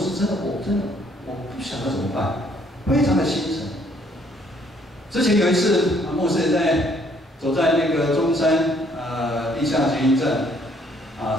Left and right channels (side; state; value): both; normal; correlation 0.64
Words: 我不晓得怎么办，非常的心沉。之前有一次，牧师也走在那个中山地下捷运站